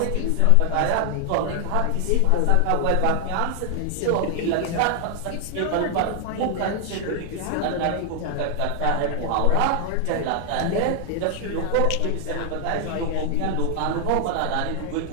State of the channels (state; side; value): different; both; correlation 0.00